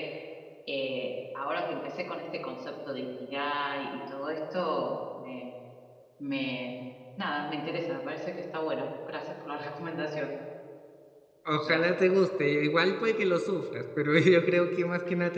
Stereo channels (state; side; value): identical; both; correlation 1.00